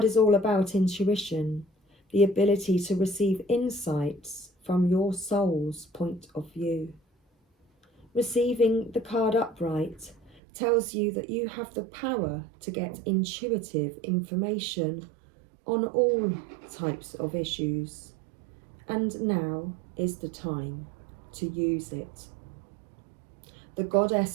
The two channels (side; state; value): left; drops out; at 10.4 s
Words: is all about intuition, the ability to receive insights from your soul's point of view. Receiving the card upright tells you that you have the power to get intuitive information on all types of issues, and now is the time to use it. The